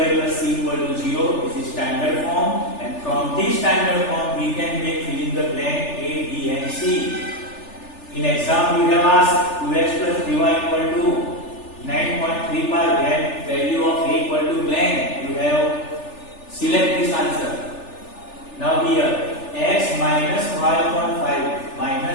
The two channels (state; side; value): late; right; 3.4 ms